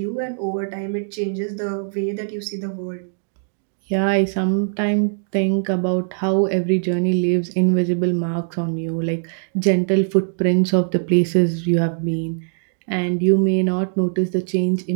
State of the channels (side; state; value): left; silent; digital silence